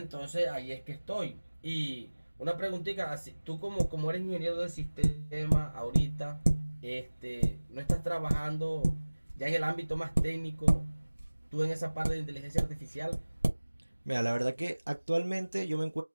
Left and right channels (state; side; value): inverted; both; correlation -1.00